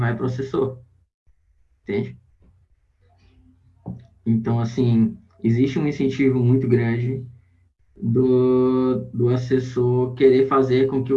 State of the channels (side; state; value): both; identical; correlation 1.00